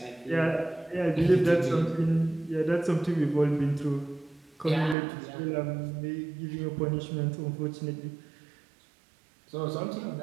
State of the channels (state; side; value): drops out; left; at 5.0 s